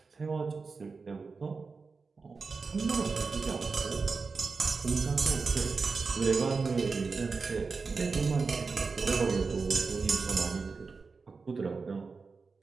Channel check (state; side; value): quieter; left; 4.6 dB